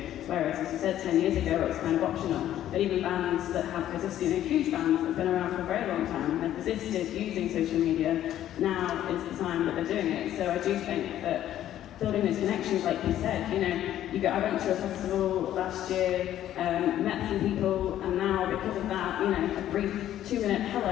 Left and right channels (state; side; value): quieter; right; 12.0 dB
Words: Whereas, as you said, 10 years ago, it was kind of optional. But even bands that have persisted, huge bands that have been around for a very long time and have persisted using social media, now is the time that they're doing it. So I do think that building those connections, like you said, I went to a festival last year, met some people, and now because of that, a brief 2-minute